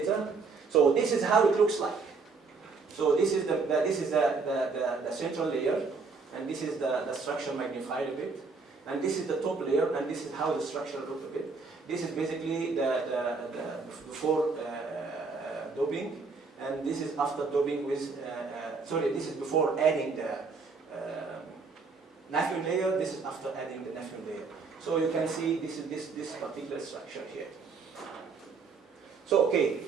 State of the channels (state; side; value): quieter; left; 4.5 dB